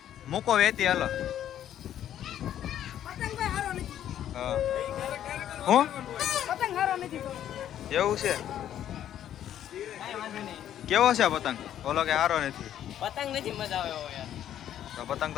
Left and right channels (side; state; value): right; quieter; 10.9 dB